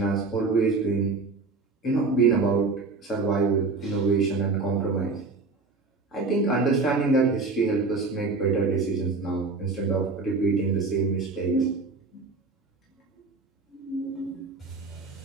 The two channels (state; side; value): quieter; left; 3.9 dB